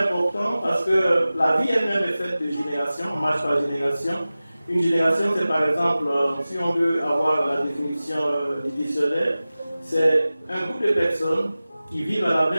parce que la vie elle-même est faite de générations, on marche par génération. Une génération, c'est par exemple, si on veut avoir la définition du dictionnaire, c'est un groupe de personnes qui vivent à la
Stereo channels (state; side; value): inverted; both; correlation -0.97